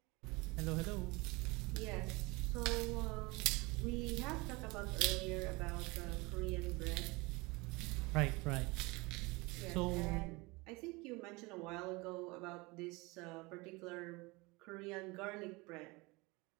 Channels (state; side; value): quieter; left; 24.8 dB